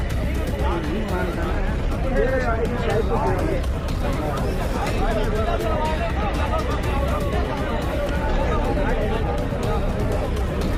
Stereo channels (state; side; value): identical; both; correlation 1.00